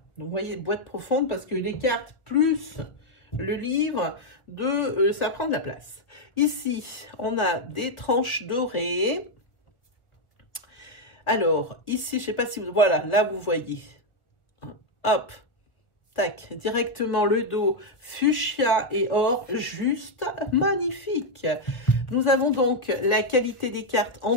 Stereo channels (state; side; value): late; right; 1.3 ms